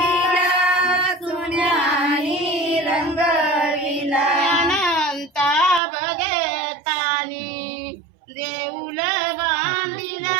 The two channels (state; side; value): drops out; left; at 5.8 s